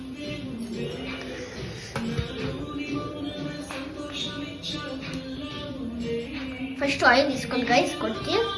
ఫస్ట్ ఆయిల్ తీసుకోండి గైస్. కొంచెం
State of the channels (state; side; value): identical; both; correlation 1.00